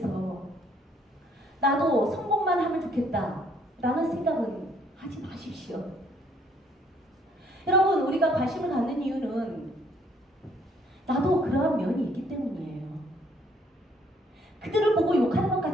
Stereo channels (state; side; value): normal; both; correlation 0.65